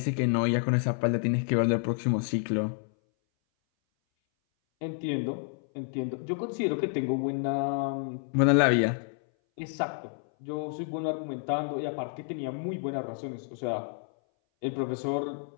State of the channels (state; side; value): silent; right; 58 dB below the other